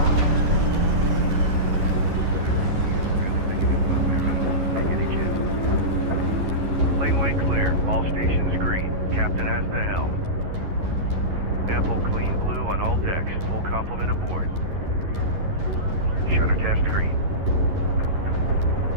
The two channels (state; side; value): late; left; 11 ms